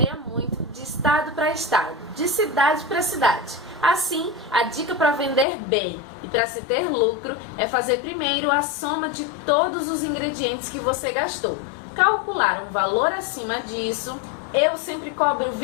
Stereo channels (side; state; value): right; drops out; at 5.5 s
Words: muito de estado para estado, de cidade para cidade. Assim, a dica para vender bem e para se ter lucro é fazer primeiro a soma de todos os ingredientes que você gastou. Calcular um valor acima disso, eu sempre cobro